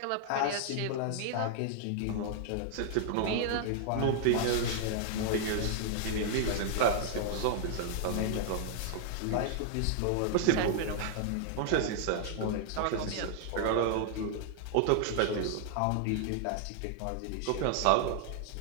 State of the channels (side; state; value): both; different; correlation -0.01